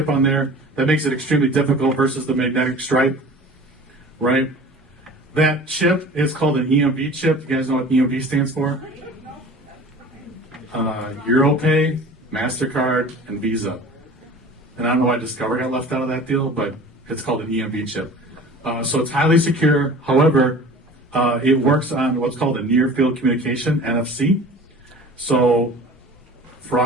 on there. That makes it extremely difficult versus the magnetic stripe, right? That chip is called an EMV chip. You guys know what EMV stands for? Europay, MasterCard, and Visa. And I don't know why Discover got left out of that deal, but it's called an EMV chip. So it's highly secure. However, it works on what's called a near field communication, NFC. So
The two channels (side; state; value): both; normal; correlation 0.42